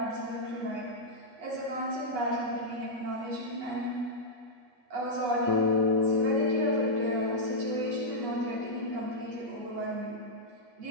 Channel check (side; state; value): left; late; 8.2 ms